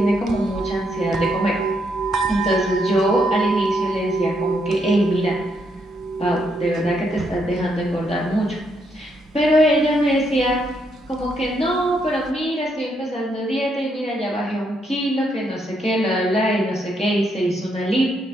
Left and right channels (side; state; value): both; normal; correlation 0.76